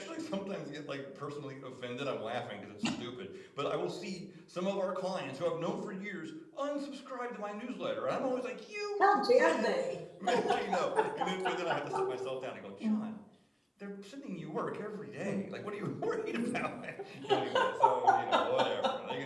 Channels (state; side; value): identical; both; correlation 1.00